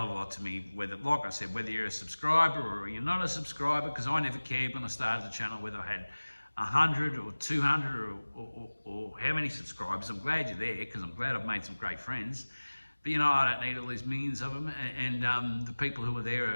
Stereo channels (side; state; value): both; inverted; correlation -1.00